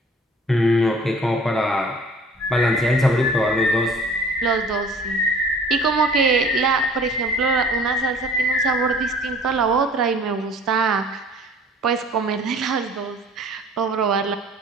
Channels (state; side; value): normal; both; correlation 0.49